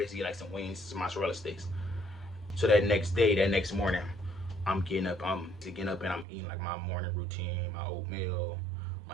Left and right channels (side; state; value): left; drops out; at 6.2 s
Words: get like some wings, some mozzarella sticks. So that next day, that next morning, I'm getting up and I'm eating like my morning routine, my oatmeal,